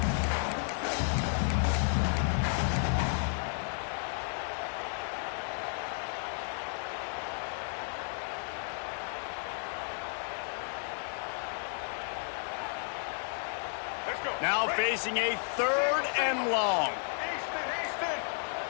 Now facing a 3rd and long.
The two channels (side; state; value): right; silent; 55 dB below the other